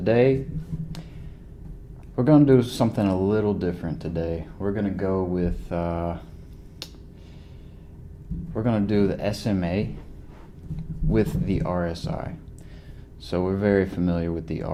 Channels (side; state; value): both; identical; correlation 1.00